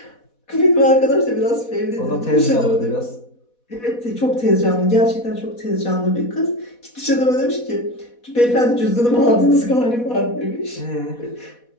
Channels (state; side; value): late; right; 4.1 ms